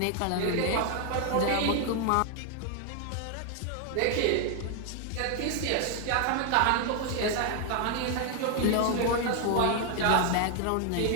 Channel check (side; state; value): both; different; correlation 0.00